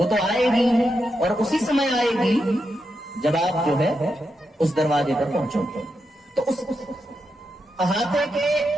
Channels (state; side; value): normal; both; correlation 0.85